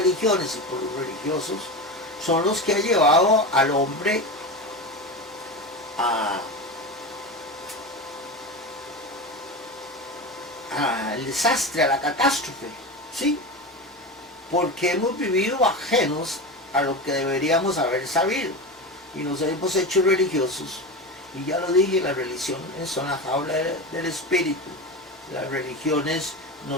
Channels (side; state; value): both; normal; correlation 0.23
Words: y por los religiosos son los que han llevado al hombre al desastre, a la catástrofe, ¿sí? Porque hemos vivido ajenos a lo que deberíamos haber sabido y nos hemos hecho religiosos. Y ya lo dije, las religiones son la jaula del espíritu. Las religiones